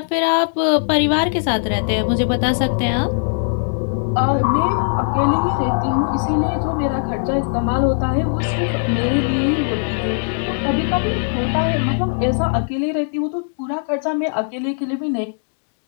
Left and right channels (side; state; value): right; silent; digital silence